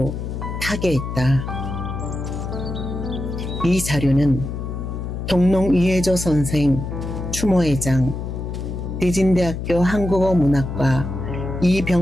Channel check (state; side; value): noise; left; hum, 5 dB below the sound